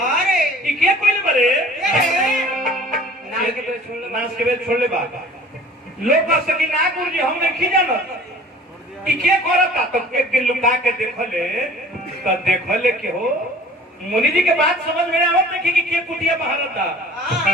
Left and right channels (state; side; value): normal; both; correlation 0.47